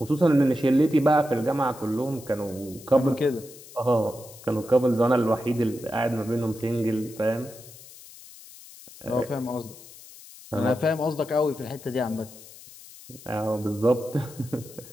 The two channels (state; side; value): noise; left; hiss, 19 dB below the sound